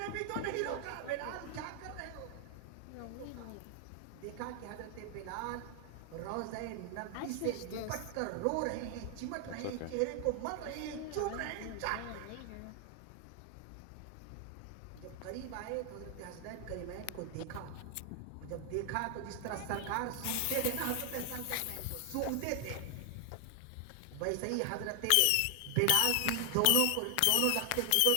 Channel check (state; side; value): different; both; correlation 0.00